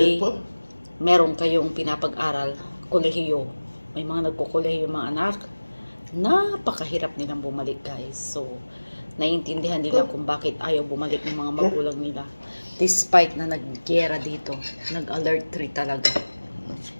meron kayong pinapag-aral, kolehiyo. May mga nagkukolehiyo mga anak, napakahirap nilang bumalik, guys. So, naiintindihan nila kung bakit ayaw bumalik ng mga magulang nila. Despite na nag-gera dito, nag-alert 3 talaga.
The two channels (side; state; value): both; inverted; correlation -1.00